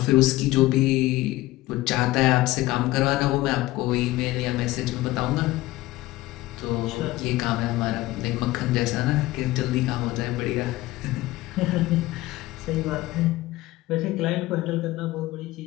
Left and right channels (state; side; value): quieter; right; 17.9 dB